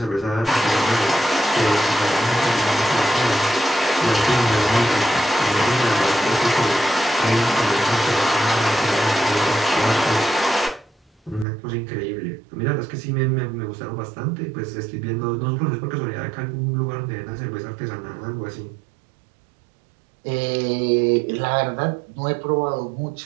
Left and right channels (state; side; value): drops out; left; at 11.5 s